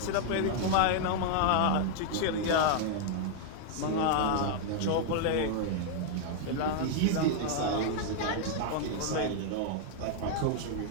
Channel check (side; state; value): both; different; correlation -0.01